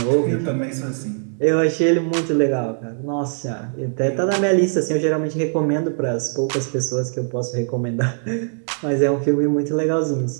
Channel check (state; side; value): silent; left; digital silence